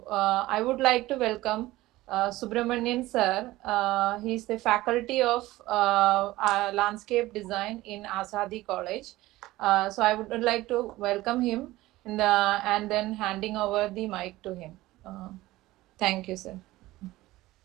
I would like to welcome Subramanian sir. He is the faculty of landscape design in ASADI College. So I would like to welcome him and then handing over the mic to him. Thank you, sir.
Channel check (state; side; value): quieter; left; 17.7 dB